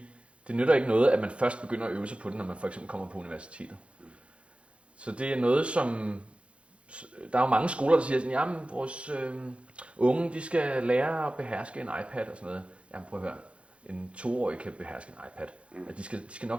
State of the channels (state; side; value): late; left; 0.060 ms